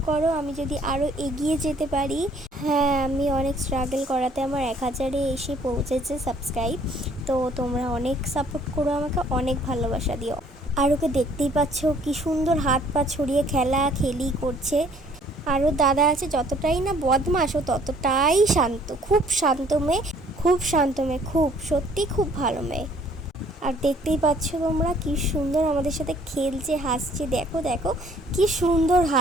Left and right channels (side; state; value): both; normal; correlation 0.59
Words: করো, আমি যদি আরও এগিয়ে যেতে পারি। হ্যাঁ, আমি অনেক স্ট্রাগল করাতে আমার 1000-এ এসে পৌঁছেছে সাবস্ক্রাইব। তো তোমরা অনেক সাপোর্ট করো, আমাকে অনেক ভালোবাসা দিও। আর ওকে দেখতেই পাচ্ছ কি সুন্দর হাত পা ছড়িয়ে খেলি করছে। আরও দাদা আছে, যতটাই না বদমাশ ও ততটাই শান্ত, খুব শান্ত মেয়ে, খুব সত্যি খুব ভালো মেয়ে। আর দেখতেই পাচ্ছ তোমরা কি সুন্দর আমাদের সাথে খেলছে, হাসছে। দেখো দেখো কি সুন্দর